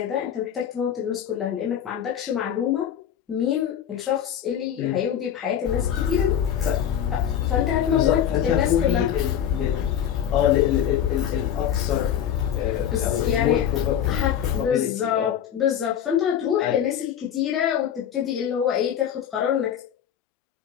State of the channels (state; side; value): quieter; right; 9.5 dB